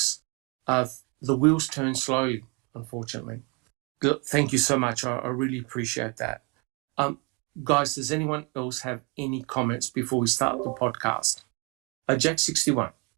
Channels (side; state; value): left; quieter; 30.2 dB